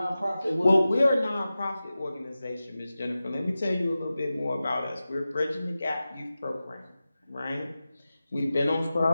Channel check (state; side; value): inverted; both; correlation -0.94